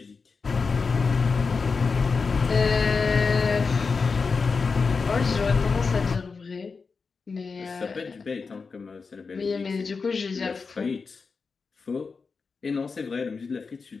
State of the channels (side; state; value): right; quieter; 4.8 dB